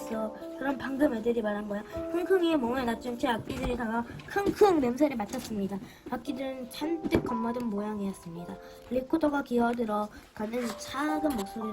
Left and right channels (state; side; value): identical; both; correlation 1.00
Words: 그럼 방금 애들이 말한 거야. 킁킁이의 몸에 낮춘 채 악기들이 다가 킁킁 냄새를 맡았습니다. 악기들은 잔뜩 겁먹은 모양이었습니다. 리코더가 기어들어 가는 작은